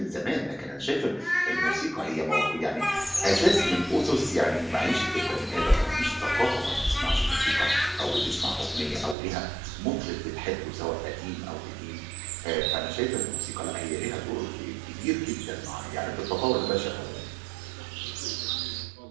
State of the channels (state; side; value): drops out; left; at 9.2 s